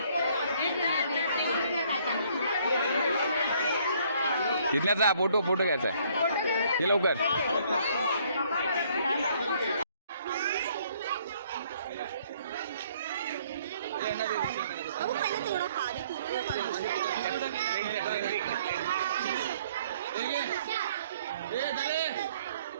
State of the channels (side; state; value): both; inverted; correlation -0.62